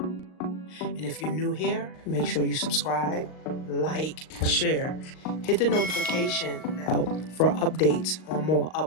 if you're new here, make sure you subscribe, like, share. Hit the notification bell for updates on more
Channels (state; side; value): late; right; 38 ms